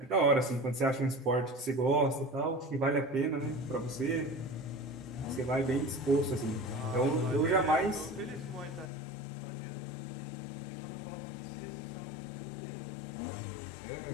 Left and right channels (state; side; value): drops out; right; at 8.9 s